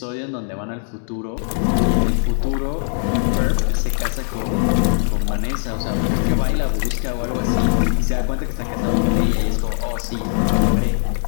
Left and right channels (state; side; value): silent; right; digital silence